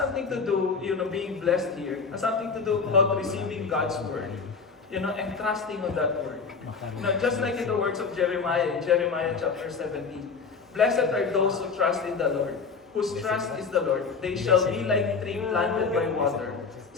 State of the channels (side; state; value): right; quieter; 5.1 dB